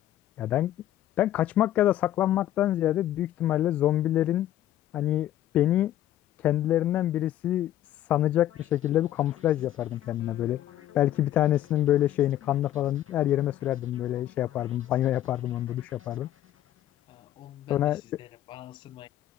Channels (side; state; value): right; quieter; 12.7 dB